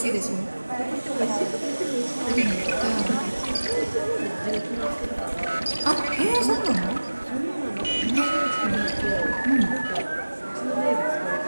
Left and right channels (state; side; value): inverted; both; correlation -1.00